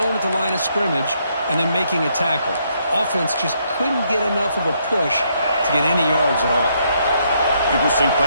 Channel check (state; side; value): inverted; both; correlation -0.73